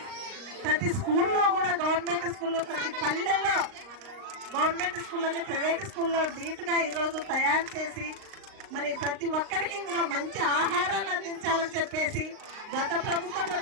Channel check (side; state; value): left; late; 38 ms